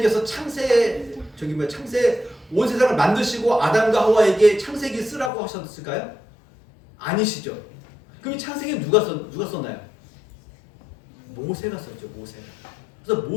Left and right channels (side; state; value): right; drops out; at 5.3 s